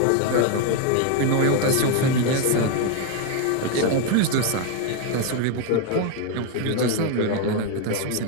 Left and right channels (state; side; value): different; both; correlation 0.01